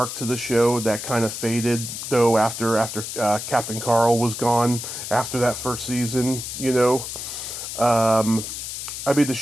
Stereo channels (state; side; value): noise; left; hiss, 7 dB below the sound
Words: to the show that kind of faded though after Captain Carl was gone after that first season. I mean, the